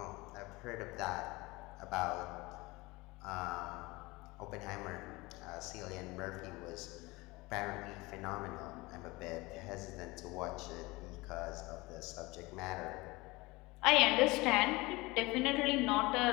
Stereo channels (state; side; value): quieter; right; 22.7 dB